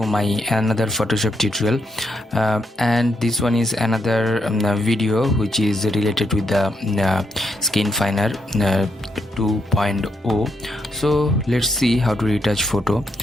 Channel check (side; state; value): both; normal; correlation 0.79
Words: my another Photoshop tutorial, and this one is another video which is related with the Skinfiner 2.0. So let's see how to retouch photo,